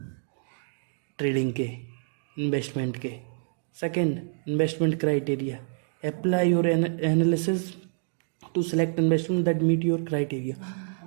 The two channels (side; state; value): left; silent; digital silence